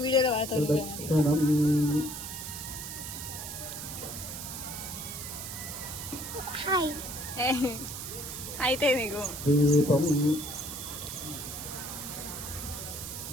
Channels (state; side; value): noise; right; hiss, 8 dB below the sound